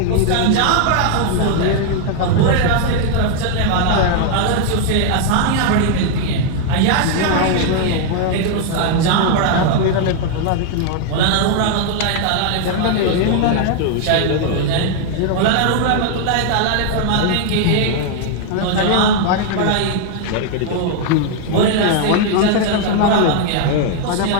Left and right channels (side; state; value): both; different; correlation 0.00